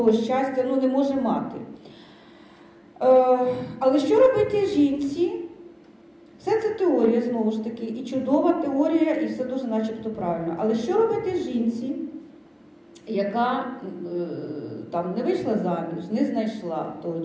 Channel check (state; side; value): identical; both; correlation 1.00